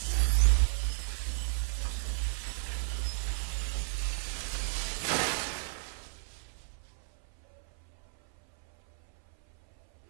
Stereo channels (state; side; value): silent; left; 55 dB below the other